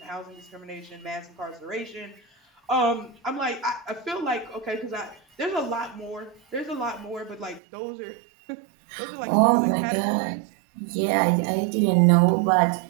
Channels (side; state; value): left; drops out; at 7.6 s